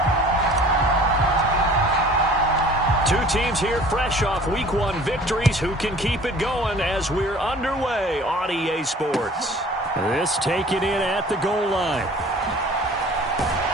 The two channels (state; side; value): normal; both; correlation 0.48